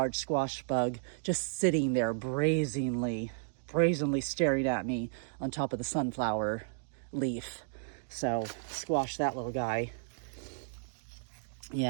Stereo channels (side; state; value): left; silent; digital silence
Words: squash bug just sitting there brazenly staring at me on top of the sunflower leaf. So squash that little guy.